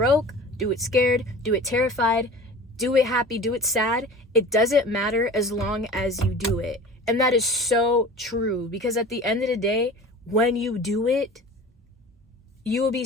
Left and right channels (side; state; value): both; normal; correlation 0.39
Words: do it scared, do it terrified, do it happy, do it sad. It doesn't matter as long as you do it. And that is so true, because at the end of the day, when you do it, you will be